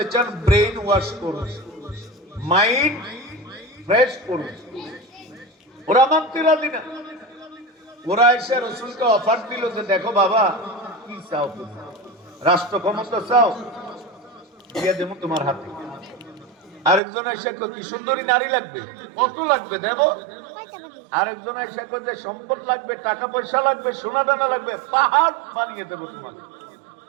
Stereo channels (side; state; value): left; drops out; at 17.0 s